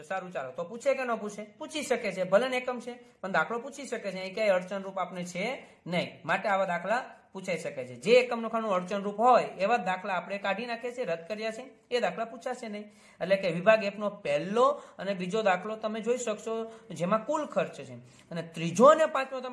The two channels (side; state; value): both; identical; correlation 1.00